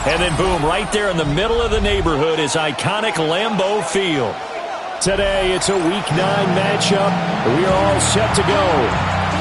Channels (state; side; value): identical; both; correlation 1.00